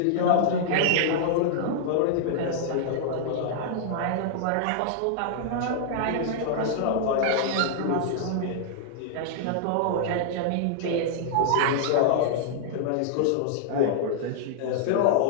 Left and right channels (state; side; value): different; both; correlation -0.01